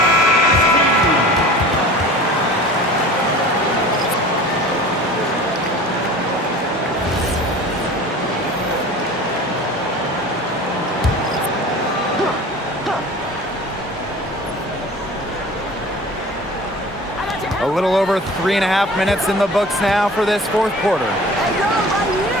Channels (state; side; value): normal; both; correlation 0.41